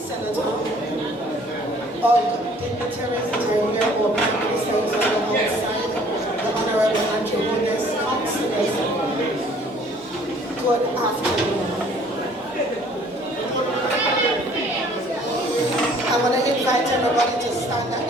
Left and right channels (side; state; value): both; normal; correlation 0.56